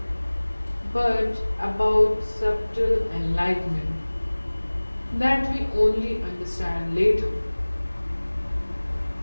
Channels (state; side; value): inverted; both; correlation -1.00